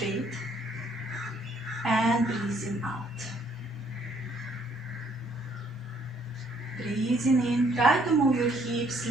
and breathing out. Breathing in, try to move your hips a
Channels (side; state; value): both; normal; correlation 0.66